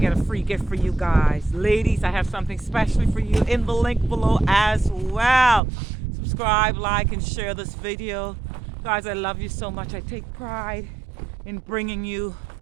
a free gift for you guys. Ladies, I have something special for you in the link below as well. Subscribe, like, and share this video. Guys, I love you so much. I take pride in bringing you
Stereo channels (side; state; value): left; drops out; at 5.6 s